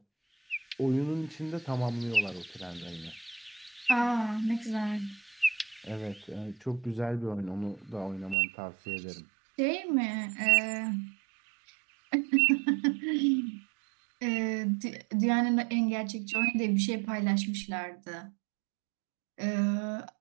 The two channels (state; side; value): drops out; left; at 8.3 s